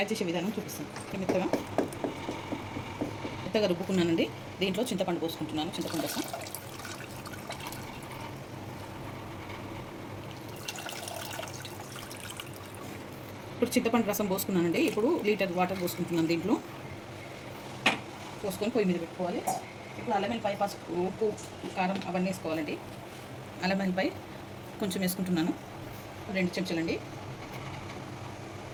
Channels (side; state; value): both; identical; correlation 1.00